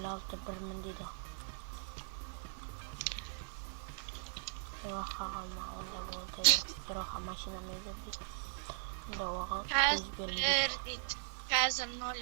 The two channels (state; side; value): silent; left; 52 dB below the other